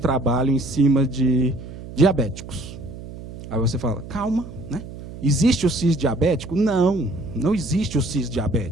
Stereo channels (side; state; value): right; noise; hum, 13 dB below the sound